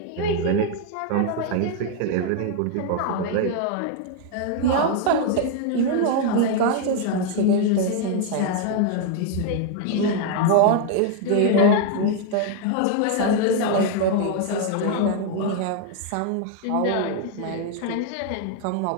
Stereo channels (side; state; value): both; different; correlation 0.00